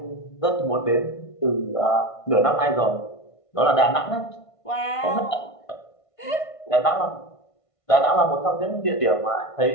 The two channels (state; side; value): late; right; 1.5 ms